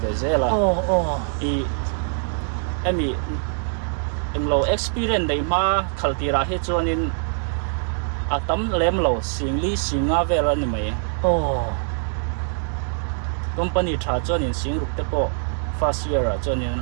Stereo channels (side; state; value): left; silent; 63 dB below the other